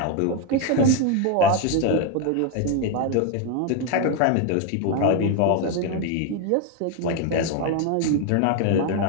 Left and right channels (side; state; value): both; different; correlation 0.01